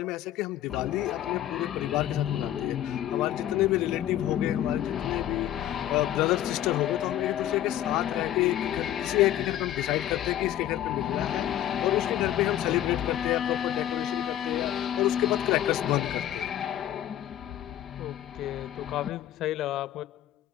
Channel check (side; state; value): right; quieter; 12.1 dB